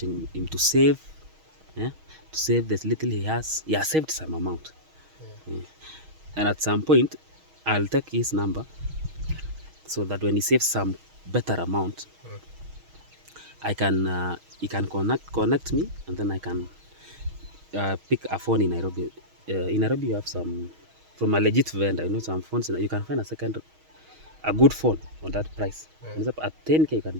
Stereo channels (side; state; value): left; late; 6.3 ms